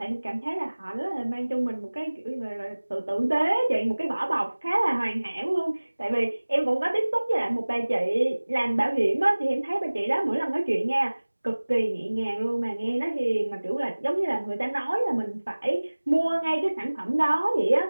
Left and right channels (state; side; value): inverted; both; correlation -1.00